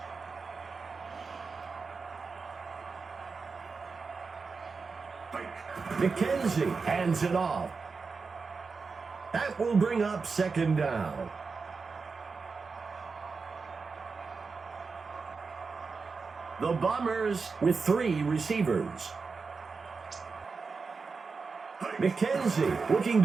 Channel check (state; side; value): quieter; left; 4.7 dB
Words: McKenzie hands it off. That will bring up second down. The Bombers with 3 receivers. McKenzie looking